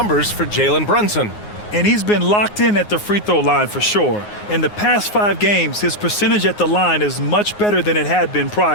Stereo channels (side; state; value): right; late; 9.6 ms